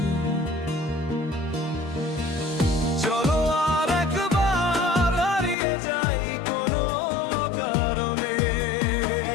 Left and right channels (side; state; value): right; drops out; at 5.6 s